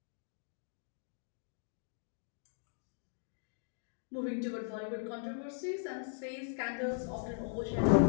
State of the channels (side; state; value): right; silent; digital silence